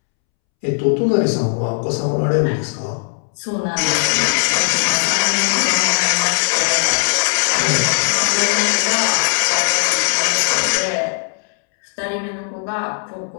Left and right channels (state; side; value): silent; right; 67 dB below the other